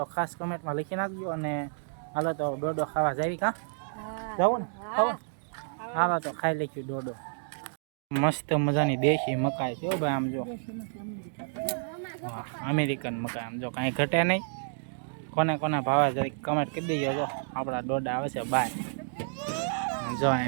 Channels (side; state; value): left; silent; digital silence